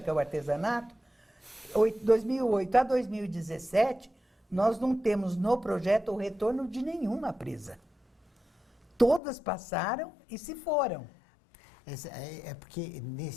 é o artesanato, 2008 a 2017, nós não temos no projeto o retorno de nenhuma presa. Todas passaram e se foram. É porque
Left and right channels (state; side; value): drops out; right; at 9.2 s